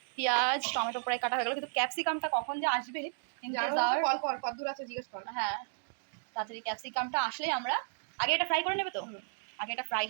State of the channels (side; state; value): left; silent; digital silence